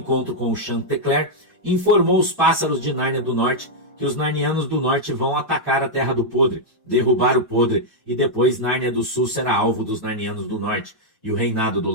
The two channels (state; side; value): normal; both; correlation -0.04